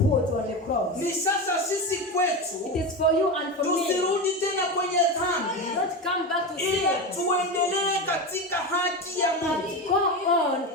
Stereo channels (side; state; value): both; normal; correlation 0.20